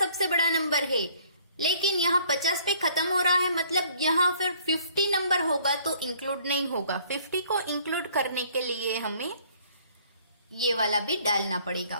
बड़ा नंबर है, लेकिन यहाँ 50 पे खत्म हो रहा है, मतलब यहाँ फिर 50 नंबर होगा तो इंक्लूड नहीं होगा। 50 को इंक्लूड करने के लिए हमें ये वाला भी डालना पड़ेगा।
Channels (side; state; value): both; inverted; correlation -0.59